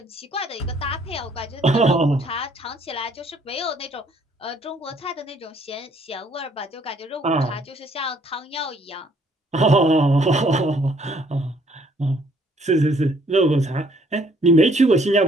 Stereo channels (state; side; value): normal; both; correlation 0.64